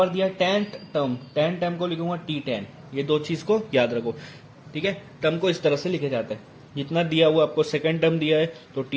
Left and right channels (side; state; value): both; identical; correlation 1.00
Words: दिया 10th टर्म, 10 टर्म को लिखूंगा T10। ये दो चीज को याद रखो, ठीक है। टर्म को इस तरह से लिखे जाते हैं, जितना दिया हुआ आपको, सेकंड टर्म दिया है तो